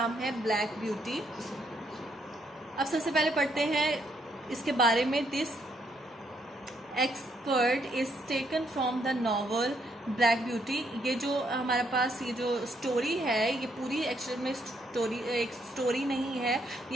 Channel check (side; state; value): both; normal; correlation 0.73